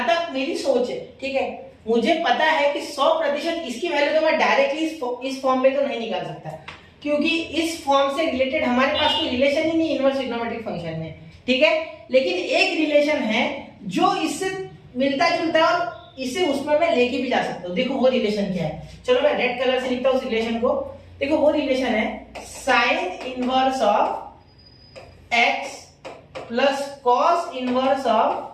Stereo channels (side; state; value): both; identical; correlation 1.00